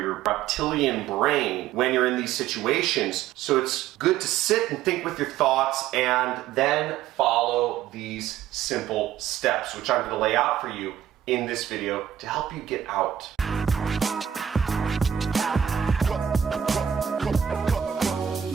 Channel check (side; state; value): left; quieter; 9.7 dB